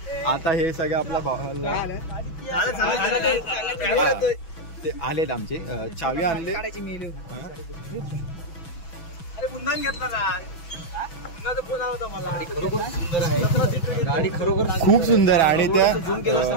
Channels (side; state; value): right; late; 6.1 ms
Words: हे सगळं आपला भावाला ते आलेत आमचे चावी आणले. गाडी खरोखर खूप सुंदर आहे आणि